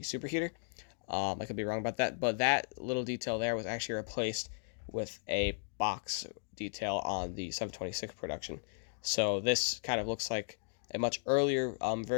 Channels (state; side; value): silent; right; digital silence